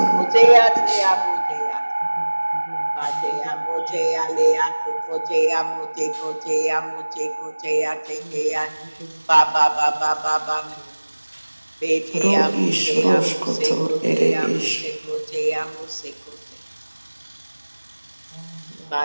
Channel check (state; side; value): inverted; both; correlation -1.00